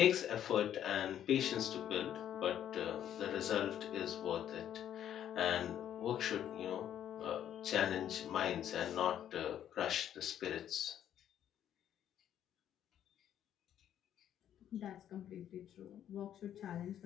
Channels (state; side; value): quieter; right; 10.5 dB